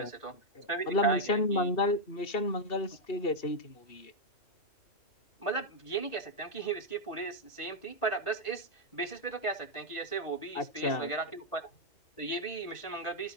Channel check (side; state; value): right; late; 2.7 ms